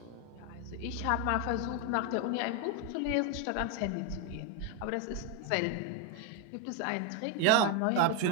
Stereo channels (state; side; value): different; both; correlation 0.01